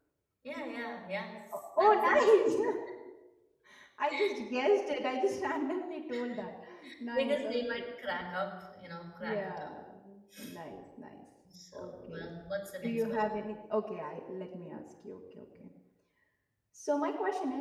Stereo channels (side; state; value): both; identical; correlation 1.00